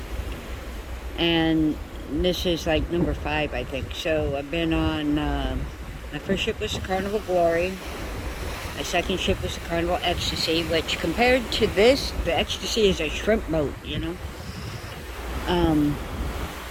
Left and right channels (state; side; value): identical; both; correlation 1.00